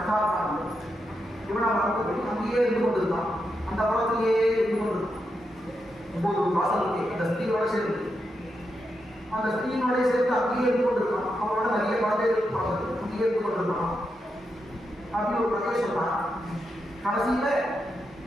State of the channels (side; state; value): both; normal; correlation 0.85